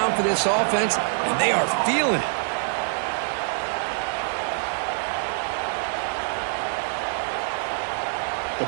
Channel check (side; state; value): left; silent; digital silence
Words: for this offense, and they are feeling it. The